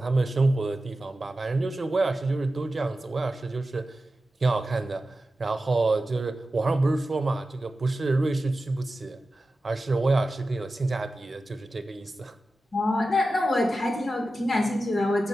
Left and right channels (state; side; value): normal; both; correlation 0.93